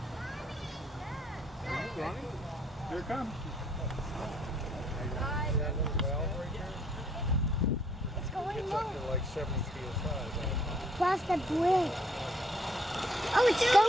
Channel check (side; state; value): both; normal; correlation 0.65